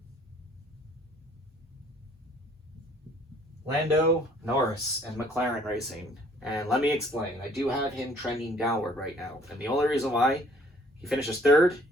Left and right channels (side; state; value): both; normal; correlation 0.58